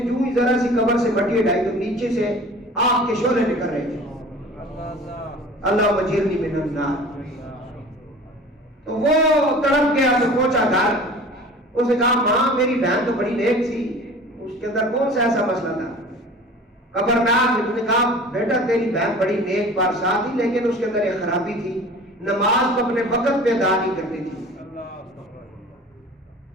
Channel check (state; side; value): normal; both; correlation 0.42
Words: ہی ذرا سی قبر سے مٹی ہٹائی تو نیچے سے آگ کے شعلے نکل رہے تھے. اللہ مجیرنی من النار. تو وہ تڑپ گیا تو پہنچا گھر، اس نے کہا ماں میری بہن تو بڑی نیک تھی، اس کے اندر کون سا ایسا مسئلہ تھا؟ خبردار. نے کہا بیٹا تیری بہن بڑی نیک بارسا تھی، لیکن اس کے اندر ایک خرابی تھی، نماز کو اپنے وقت پہ ادا نہیں کرتی تھی.